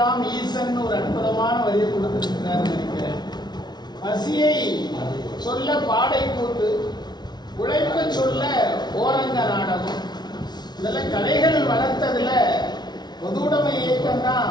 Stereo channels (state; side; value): late; right; 0.20 ms